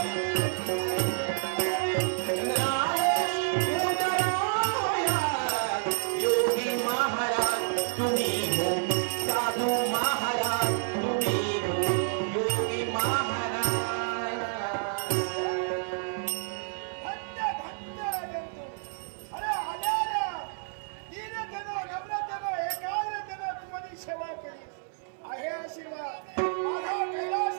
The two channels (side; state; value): left; silent; 58 dB below the other